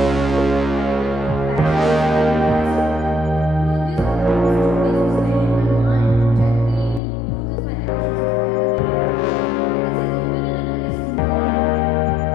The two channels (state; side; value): drops out; right; at 7.0 s